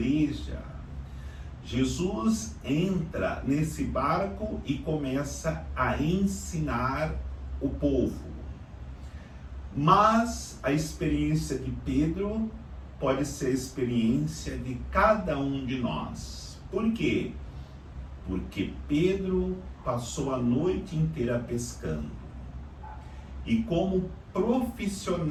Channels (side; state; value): both; identical; correlation 1.00